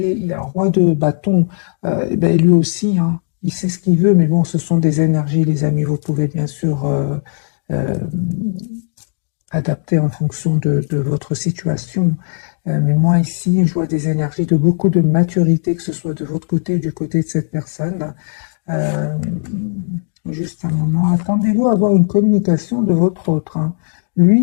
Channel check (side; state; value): right; silent; digital silence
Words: il est un roi de bâton. Ben, lui aussi, hein, il sait ce qu'il veut, mais bon, ce sont des énergies, les amis. Vous pouvez bien sûr adapter en fonction de votre situation. Mais moi, ici, je vois des énergies de beaucoup de maturité, que ce soit de votre côté ou du côté de cette personne. Juste un moment, attendez-vous à avoir une communication de votre autre. Hein.